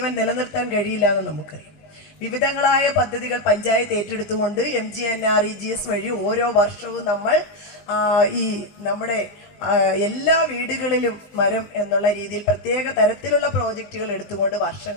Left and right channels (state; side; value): late; right; 20 ms